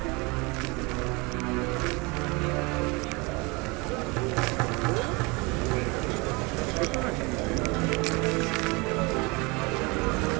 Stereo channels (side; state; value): left; quieter; 27.0 dB